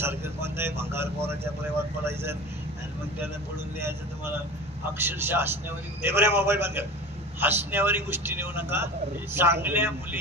कोणत्याही भंगार पोराच्या प्रेमात पडायचं आणि मग त्याला पडून द्यायचं. तुम्हाला अक्षरशः हसण्यावर मोबाईल बंद कर, हसण्यावरी गोष्टी नेऊ नका. चांगल्या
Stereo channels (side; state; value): left; noise; rumble, 26 dB below the sound